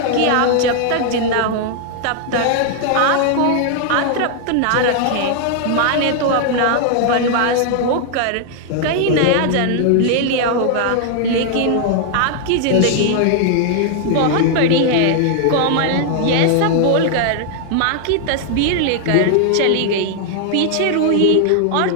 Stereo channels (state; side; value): different; both; correlation 0.00